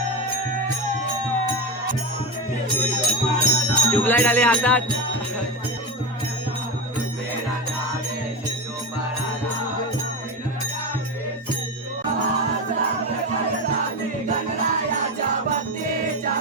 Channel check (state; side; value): normal; both; correlation 0.17